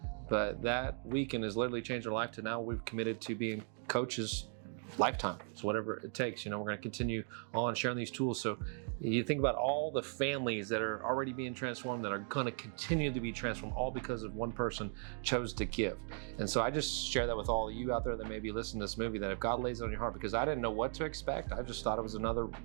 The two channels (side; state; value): left; silent; 53 dB below the other